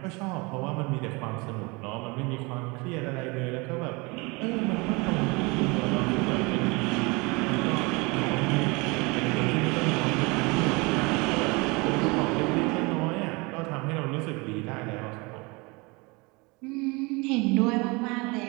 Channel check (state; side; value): quieter; left; 26.8 dB